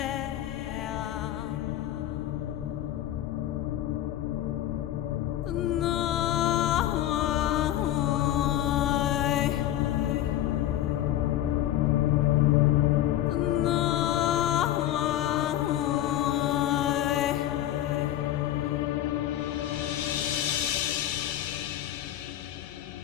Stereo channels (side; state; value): right; quieter; 12.8 dB